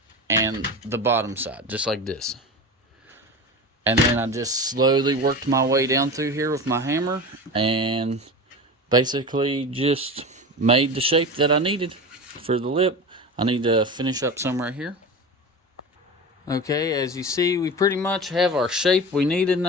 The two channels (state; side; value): normal; both; correlation 0.29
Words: and the bottom side, just like this. And then I just slowly worked my way down through here with my hammer and basically just made the shape that I needed for the lip. I need to finish up some right here. Okay, as you see, we pretty much have our shape we needed